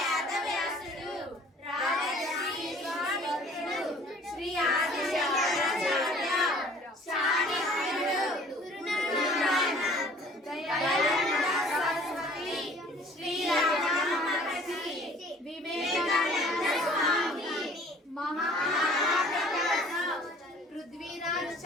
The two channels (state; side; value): normal; both; correlation 0.52